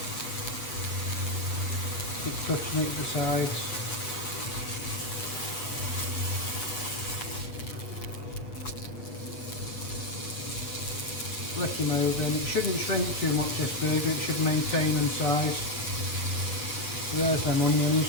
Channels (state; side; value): late; right; 8.0 ms